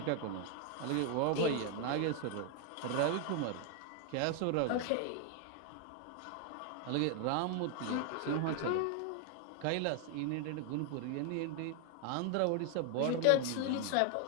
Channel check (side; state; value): both; different; correlation 0.00